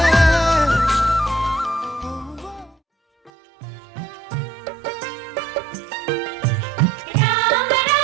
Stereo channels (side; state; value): left; drops out; at 3.3 s